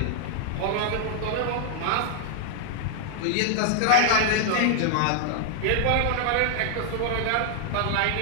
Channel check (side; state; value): both; different; correlation -0.01